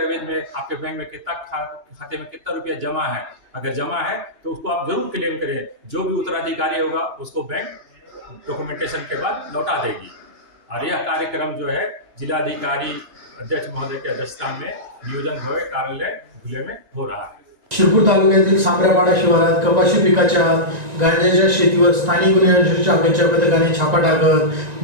में आपके बैंक में कितना खाते में कितना रुपया जमा है. अगर जमा है तो उसको आप जरूर क्लेम करें. जो भी उत्तराधिकारी होगा उसको बैंक डॉक्यूमेंटेशन के बाद लौटा देगी. और यह कार्यक्रम जो है जिलाधिकारी अध्यक्ष महोदय के अध्यक्षता में नियोजन भवन कार्यालय धुले में हो रहा है. शिरपूर तालुक्यातील सांबऱ्यापाडा शिवारात कपाशी पिकाच्या गांजाच्या शेतीवर स्थानिक गुन्हे अन्वेषण शाखेच्या पथकाने छापा टाकत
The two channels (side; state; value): left; late; 1.9 ms